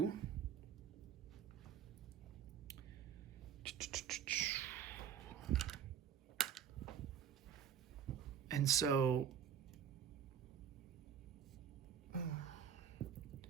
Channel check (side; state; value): left; quieter; 8.4 dB